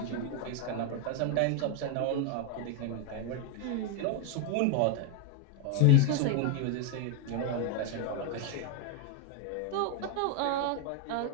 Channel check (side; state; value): both; different; correlation 0.01